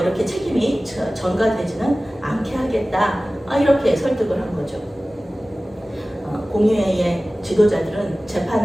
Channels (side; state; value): both; normal; correlation 0.97